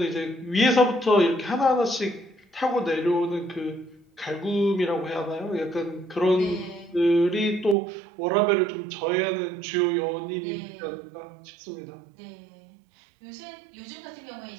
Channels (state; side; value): drops out; left; at 7.8 s